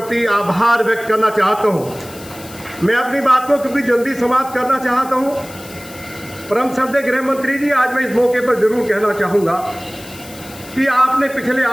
आभार व्यक्त करना चाहता हूँ। मैं अपनी बात को क्योंकि जल्दी समाप्त करना चाहता हूँ। परम श्रद्धेय गृह मंत्री जी, आज मैं इस मौके पर जरूर कहना चाहूँगा कि आपने पिछले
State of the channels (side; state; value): left; noise; hiss, 18 dB below the sound